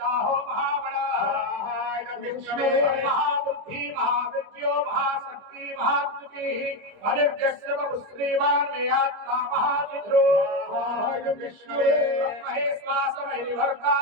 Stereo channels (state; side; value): late; left; 25 ms